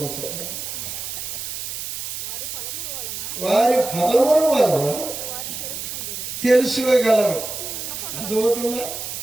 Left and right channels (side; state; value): right; noise; hiss, 6 dB below the sound